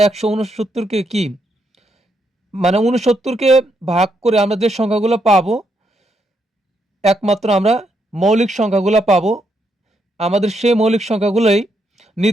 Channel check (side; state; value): both; normal; correlation 0.78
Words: ১৬৯কে কি, মানে ৬৯কে ভাগ করে আমরা যে সংখ্যাগুলো পাবো, একমাত্র আমরা মৌলিক সংখ্যাগুলো পাবো। আমাদের সেই মৌলিক সংখ্যাগুলোই